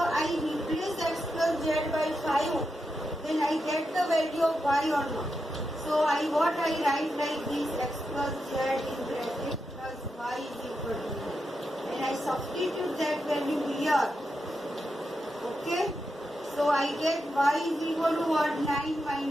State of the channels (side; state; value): both; normal; correlation 0.86